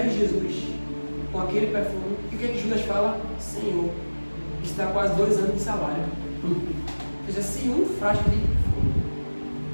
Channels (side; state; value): both; inverted; correlation -1.00